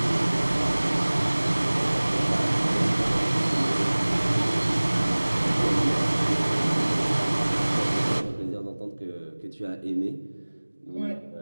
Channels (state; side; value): inverted; both; correlation -1.00